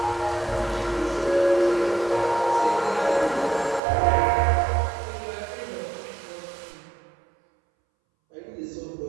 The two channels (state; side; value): drops out; left; at 3.8 s